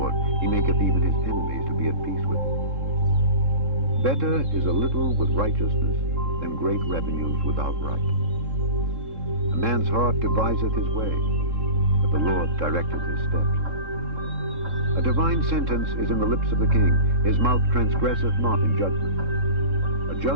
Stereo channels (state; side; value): late; left; 3.7 ms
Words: he maketh even his enemies to be at peace with him. Better is a little with righteousness than great revenues without right. A man's heart deviseth his way, but the Lord directeth his steps. A divine sentence is in the lips of the king, his mouth transgresseth not in judgment. A